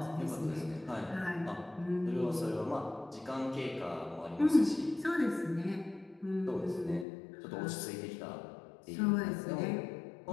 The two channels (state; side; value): drops out; right; at 7.1 s